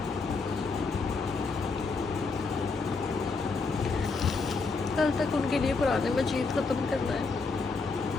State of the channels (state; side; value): quieter; right; 4.2 dB